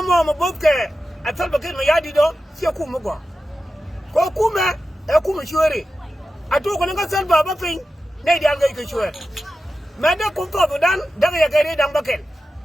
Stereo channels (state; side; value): normal; both; correlation 0.92